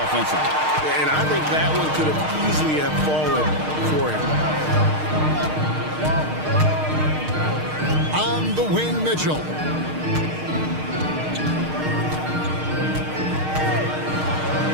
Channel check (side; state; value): left; late; 6.5 ms